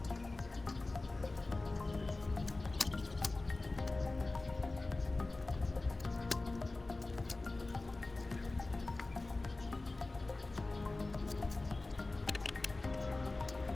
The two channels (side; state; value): right; quieter; 3.1 dB